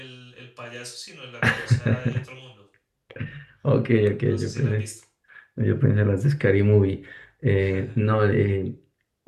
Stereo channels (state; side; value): identical; both; correlation 1.00